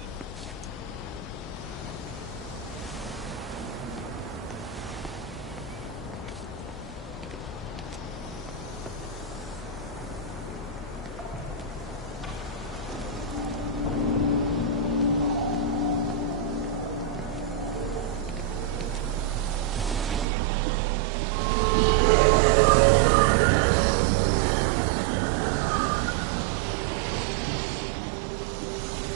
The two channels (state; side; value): drops out; left; at 20.2 s